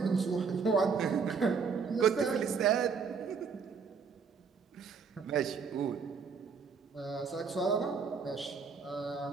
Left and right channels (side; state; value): left; quieter; 5.6 dB